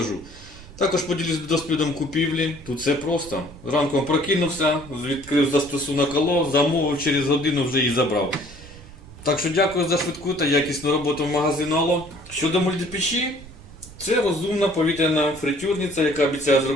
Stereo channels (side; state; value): right; noise; rumble, 18 dB below the sound